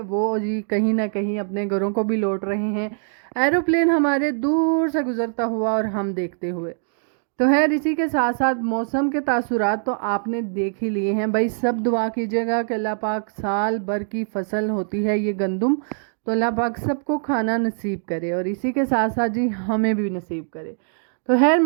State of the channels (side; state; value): left; silent; digital silence